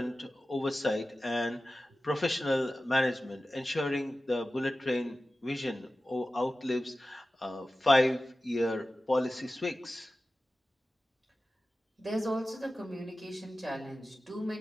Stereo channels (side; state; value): both; normal; correlation 0.95